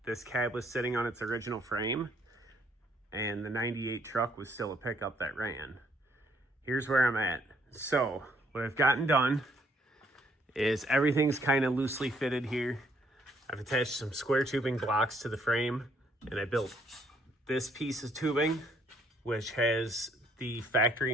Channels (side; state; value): both; normal; correlation 0.67